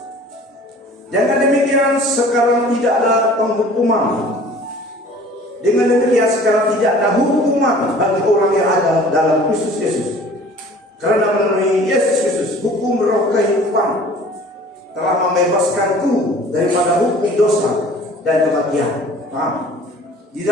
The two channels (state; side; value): normal; both; correlation 0.48